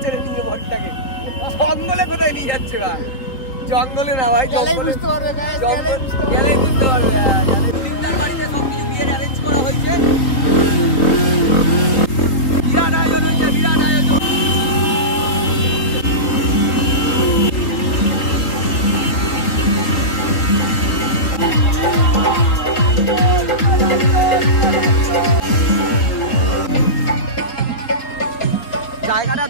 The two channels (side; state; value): right; late; 3.7 ms